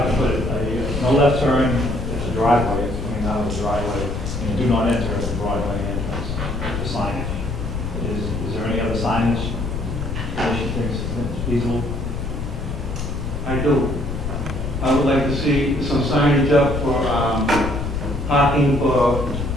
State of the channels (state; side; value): noise; left; rumble, 4 dB below the sound